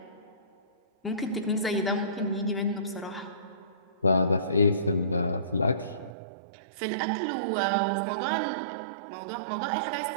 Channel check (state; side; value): drops out; left; at 6.1 s